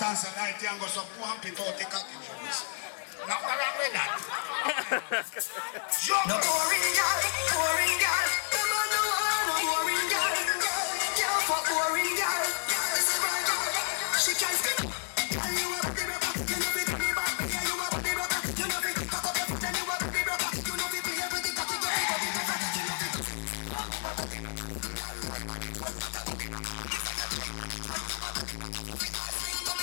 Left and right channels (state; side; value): silent; right; digital silence